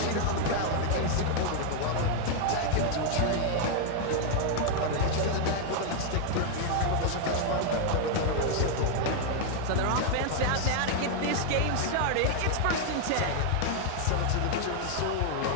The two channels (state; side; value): different; both; correlation 0.00